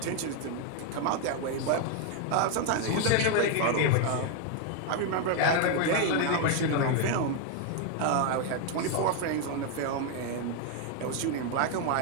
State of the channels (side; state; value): both; different; correlation 0.01